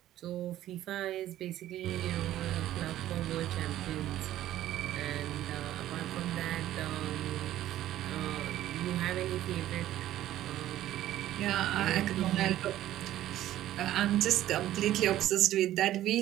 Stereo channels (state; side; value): quieter; left; 13.4 dB